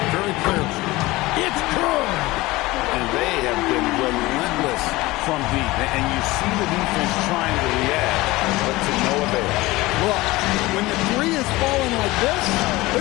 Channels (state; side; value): quieter; right; 20.0 dB